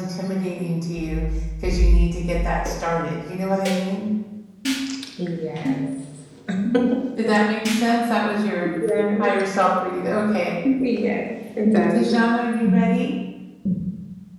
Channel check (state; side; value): identical; both; correlation 1.00